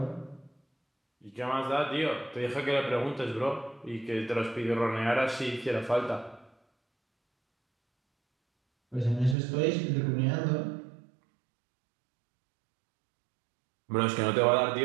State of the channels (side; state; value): left; drops out; at 9.3 s